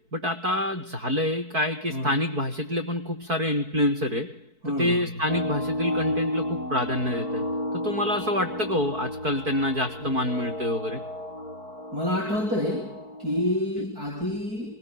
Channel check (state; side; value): late; left; 4.6 ms